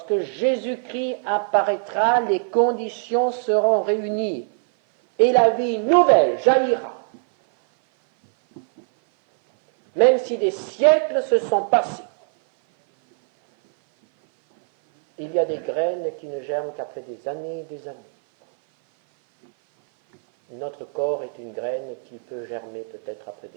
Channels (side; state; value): left; silent; 58 dB below the other